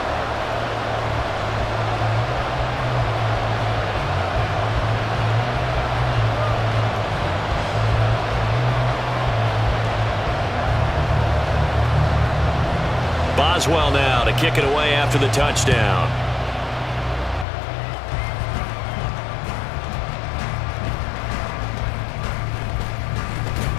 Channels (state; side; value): drops out; right; at 17.4 s